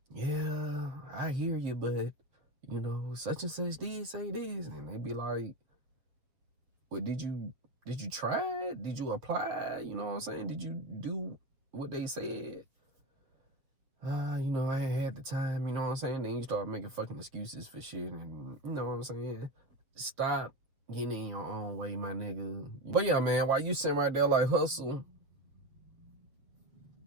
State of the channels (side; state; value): left; late; 7.3 ms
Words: yeah, I hear you, but you know, such and such did say this, and they be like, well, did you try it? Did you apply? You know what I'm saying? Did you do what they said? You know, I ain't had the time, you know what I'm saying? Then you start making fucking excuses for shit, and you know what I'm saying? Stop getting in your own way, my nigga. But yeah, man, while you sitting right there like Hussle,